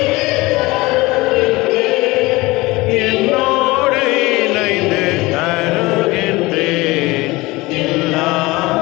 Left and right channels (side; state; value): right; quieter; 21.5 dB